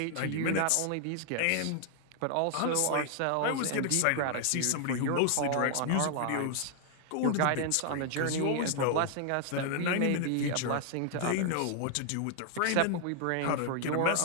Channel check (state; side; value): different; both; correlation 0.00